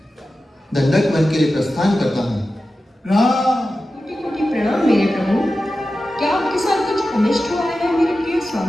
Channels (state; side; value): normal; both; correlation 0.93